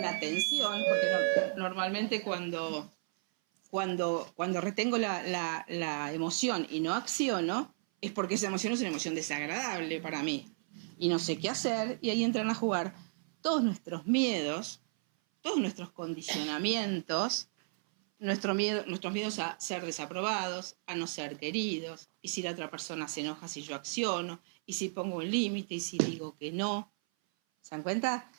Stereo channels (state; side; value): silent; left; 55 dB below the other